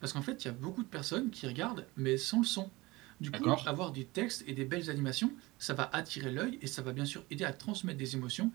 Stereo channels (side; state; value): left; quieter; 21.7 dB